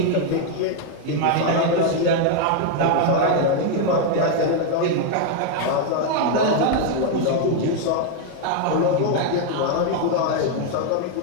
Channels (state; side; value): different; both; correlation 0.00